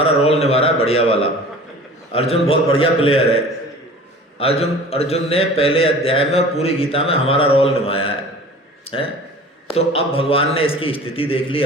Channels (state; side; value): normal; both; correlation 0.42